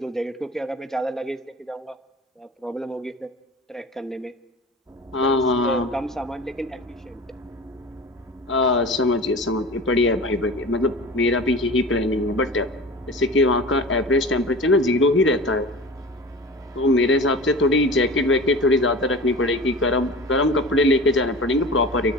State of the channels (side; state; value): both; normal; correlation 0.36